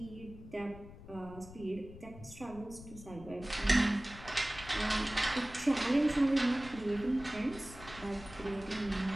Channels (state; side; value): noise; left; rumble, 16 dB below the sound